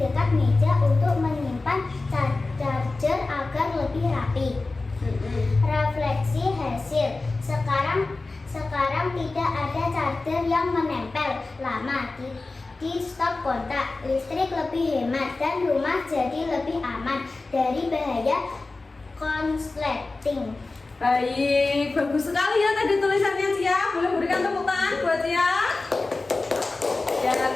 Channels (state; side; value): quieter; right; 3.4 dB